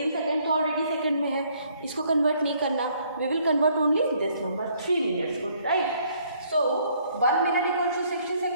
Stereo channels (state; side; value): inverted; both; correlation -0.65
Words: सेकेंड तो ऑलरेडी सेकेंड में है, इसको कन्वर्ट नहीं करना, we will convert only this number 3 minutes को, right. So 1 minute equals to 60